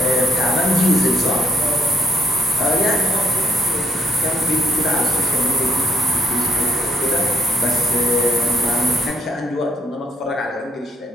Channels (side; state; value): both; normal; correlation 0.72